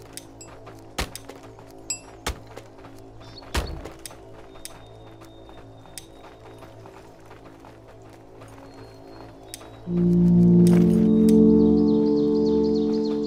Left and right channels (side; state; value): both; identical; correlation 1.00